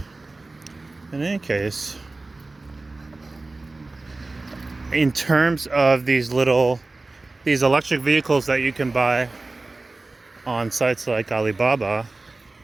In any case, in terms of these electric vehicles that you can buy on sites like Alibaba,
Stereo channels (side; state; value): left; quieter; 3.3 dB